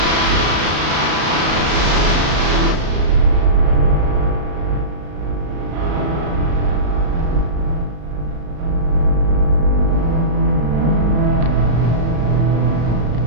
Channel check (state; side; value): late; left; 34 ms